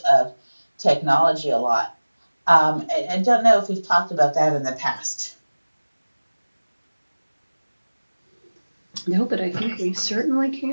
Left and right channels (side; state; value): both; inverted; correlation -1.00